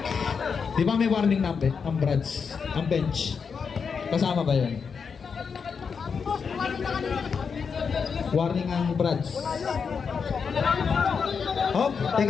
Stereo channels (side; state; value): right; quieter; 5.9 dB